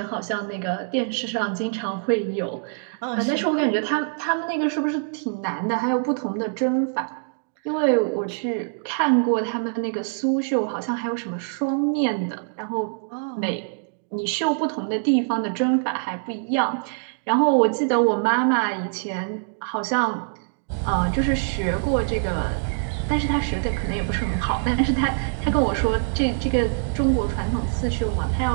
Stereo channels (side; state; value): left; silent; digital silence